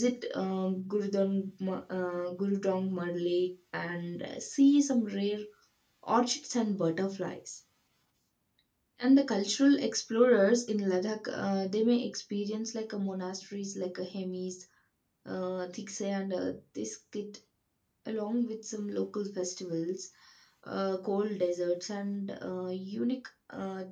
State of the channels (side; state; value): both; identical; correlation 1.00